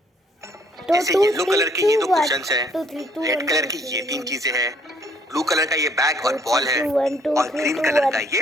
ऐसे येलो कलर के ये 2 क्वेश्चंस हैं, रेड कलर की ये 3 चीजें हैं, ब्लू कलर का ये बैग और बॉल है और ग्रीन कलर का ये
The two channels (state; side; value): normal; both; correlation 0.65